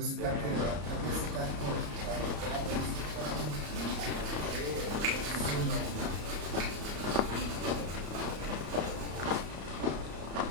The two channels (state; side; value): late; left; 34 ms